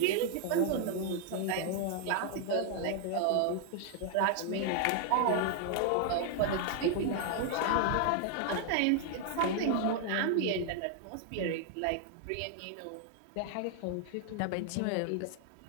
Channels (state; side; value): different; both; correlation 0.00